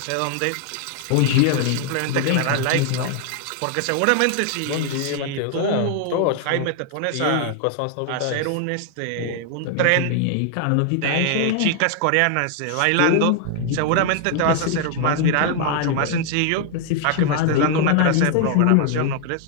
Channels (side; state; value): both; different; correlation 0.00